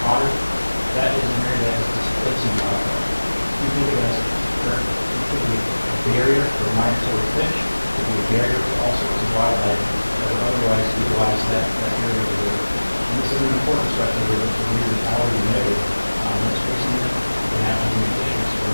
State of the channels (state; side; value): inverted; both; correlation -1.00